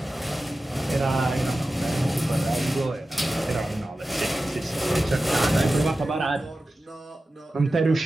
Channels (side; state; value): both; normal; correlation 0.94